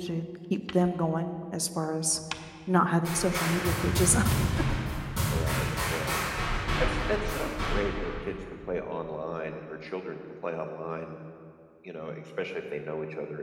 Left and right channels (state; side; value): identical; both; correlation 1.00